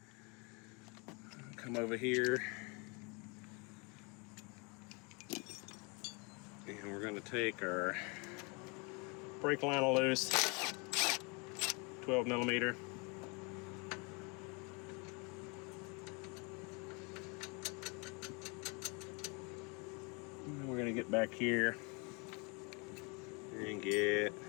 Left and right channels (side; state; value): right; quieter; 30.6 dB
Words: Come over here. And we're gonna take our brake line loose, 12 millimeter. We're gonna get back here and get